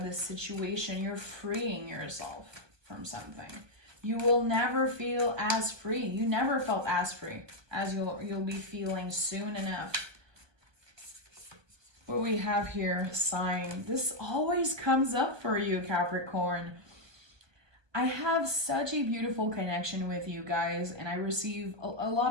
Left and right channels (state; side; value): late; left; 1.2 ms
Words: this situation. You're freeing yourself from something. You will never feel as free. You never felt as free as you'll be feeling soon enough. What we have here, sign. This always comes up for you, Capricorn. I have such a beautiful connection with you guys, and I receive a